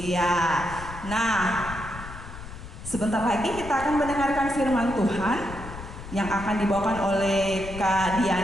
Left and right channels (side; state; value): left; noise; rumble, 12 dB below the sound